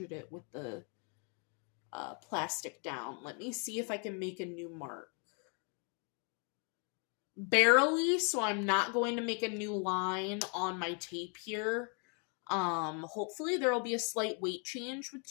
it with the plastic down. Let me see if I can make a new mark. Barely, so I'm not going to make a new line on my tape here. Hopefully there will be a slight weight change with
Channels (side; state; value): right; quieter; 38.4 dB